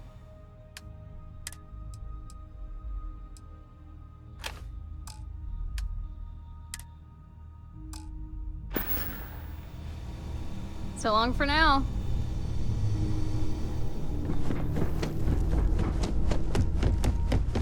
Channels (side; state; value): both; identical; correlation 1.00